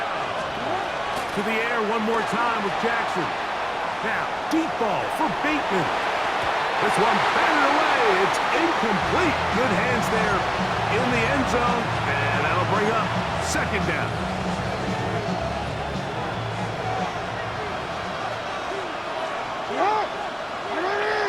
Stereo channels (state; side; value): identical; both; correlation 1.00